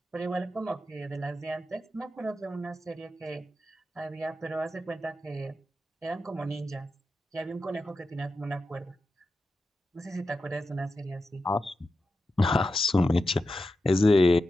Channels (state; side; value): normal; both; correlation 0.90